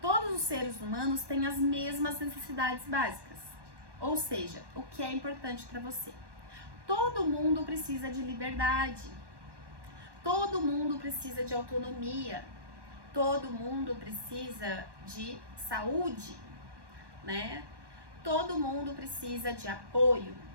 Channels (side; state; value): left; late; 1.1 ms